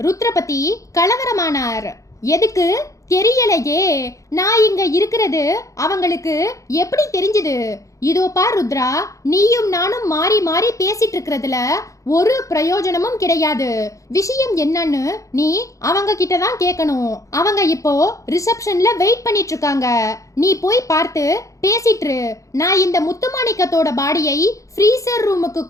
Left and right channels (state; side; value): late; right; 0.16 ms